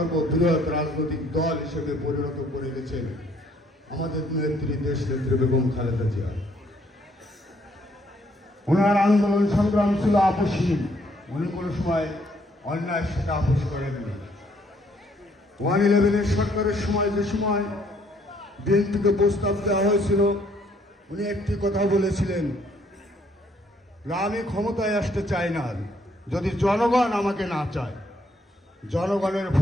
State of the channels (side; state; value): both; normal; correlation 0.67